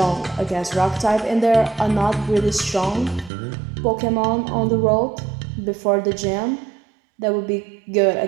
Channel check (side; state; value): left; drops out; at 3.3 s